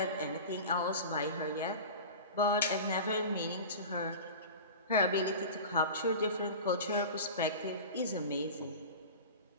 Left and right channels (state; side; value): inverted; both; correlation -0.32